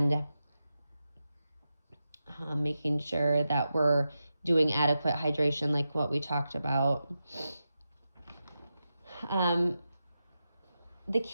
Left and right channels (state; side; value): inverted; both; correlation -0.90